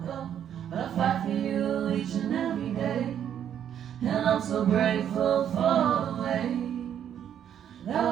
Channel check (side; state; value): left; quieter; 9.5 dB